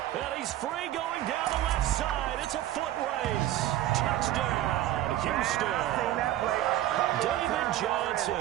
And he's free going down the left side. It's a foot race. Touchdown, Houston. David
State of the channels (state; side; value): quieter; left; 13.7 dB